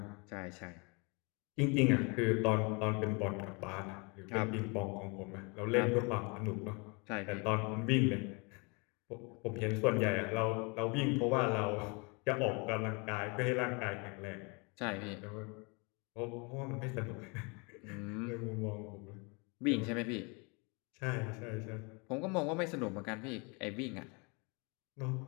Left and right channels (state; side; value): quieter; right; 31.0 dB